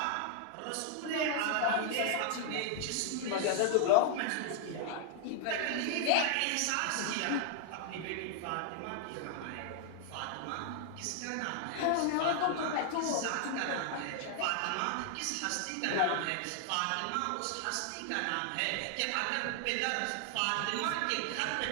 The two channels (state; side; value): different; both; correlation 0.00